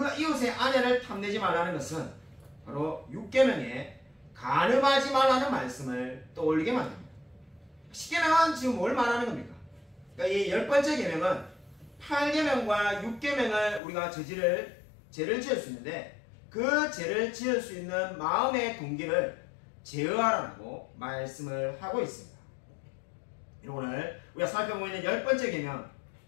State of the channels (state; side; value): drops out; right; at 13.8 s